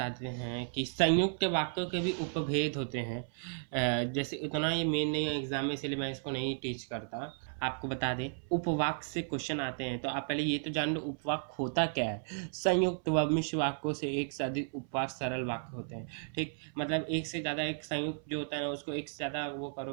हैं कि संयुक्त वाक्यों के भी उपभेद होते हैं। जैसे इतना ये मेन नहीं है एग्जाम में, इसलिए मैं इसको नहीं टीच करता। आपको बता दें उपवाक्य से क्वेश्चन आते हैं, तो आप पहले ये तो जान लो उपवाक्य होता क्या है। संयुक्त व मिश्र वाक्यों से एक से अधिक उपवाक्य सरल वाक्य होते हैं, ठीक। मतलब एक से ज़्यादा एक संयुक्त जो होता है ना, उसको एक से ज़्यादा वो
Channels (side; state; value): left; silent; 55 dB below the other